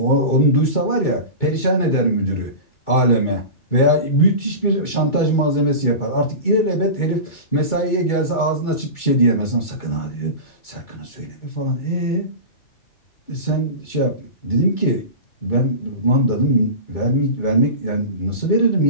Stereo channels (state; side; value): late; right; 2.3 ms